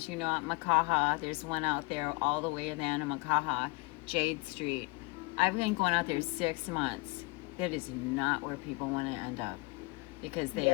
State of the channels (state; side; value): quieter; right; 25.9 dB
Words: you know, at Makaha. There's one out there all the way in the end of Makaha, Jade Street. I've been going out there 6 months. That is not where people want to end up, because they